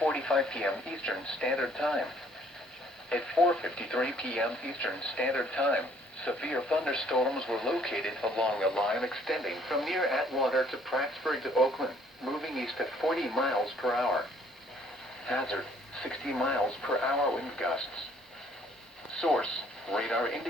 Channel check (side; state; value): both; normal; correlation 0.61